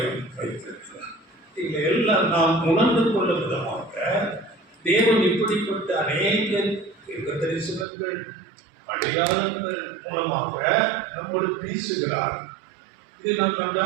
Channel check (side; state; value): left; drops out; at 7.9 s